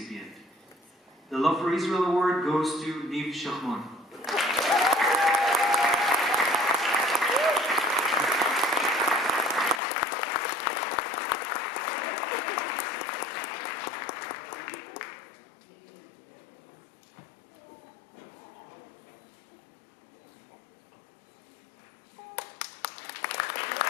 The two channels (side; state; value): right; drops out; at 9.8 s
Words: The Love for Israel Award goes to Niv Shachmon.